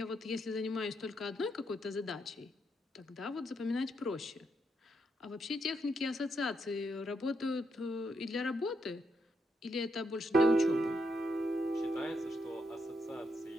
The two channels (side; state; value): both; normal; correlation 0.79